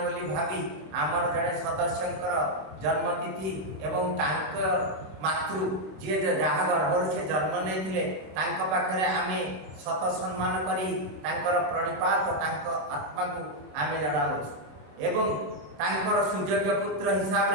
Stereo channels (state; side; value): late; left; 26 ms